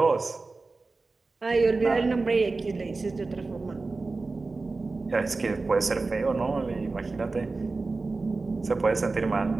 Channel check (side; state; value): left; quieter; 3.7 dB